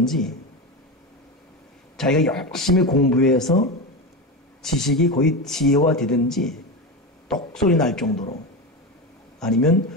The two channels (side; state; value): both; normal; correlation 0.19